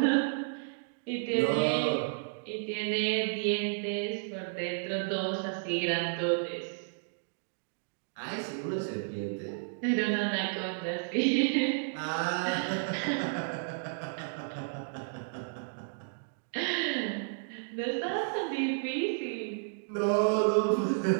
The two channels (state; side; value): silent; left; digital silence